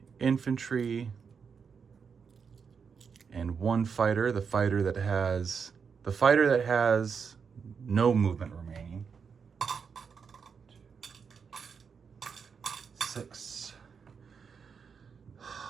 infantry, and 1 fighter, the fighter that has no movement remaining. 6.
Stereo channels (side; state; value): left; quieter; 6.1 dB